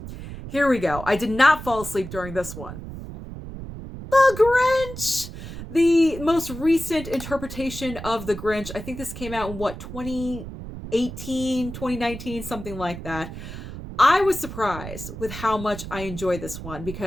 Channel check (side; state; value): right; noise; rumble, 10 dB below the sound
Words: here we go. I did not fall asleep during this one. The Grinch! The most recent interpretation of The Grinch. I think this came out in, 2018, 2019, something like that. I was surprised with how much I enjoy this one